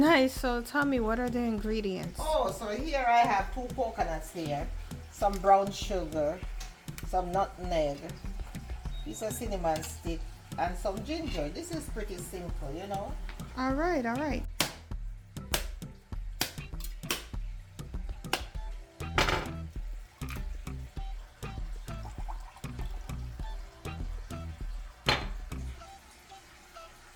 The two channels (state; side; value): identical; both; correlation 1.00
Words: So tell me, what are the ingredients? Oh, so here I have 2 coconuts here, some brown sugar, some nutmeg, piece of cinnamon stick, and some ginger. This is pretty simple, you know. Alright.